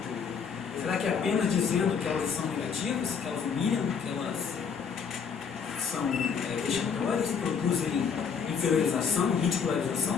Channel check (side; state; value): right; quieter; 6.4 dB